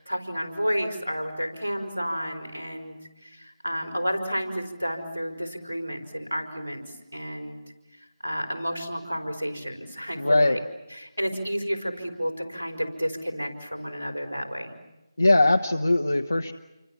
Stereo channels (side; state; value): both; inverted; correlation -0.97